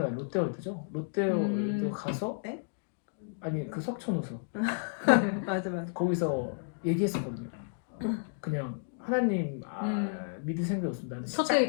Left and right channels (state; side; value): silent; right; digital silence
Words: 롯데월드죠. 롯데월드 가서 아니 그 석촌호수 맞아. 거기서 얘기했었거든요. 그냥 하나님 믿을 생각이 없습니다. 나는 첫